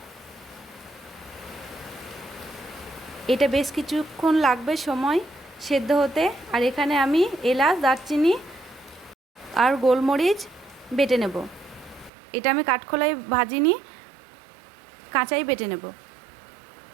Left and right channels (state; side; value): drops out; left; at 12.1 s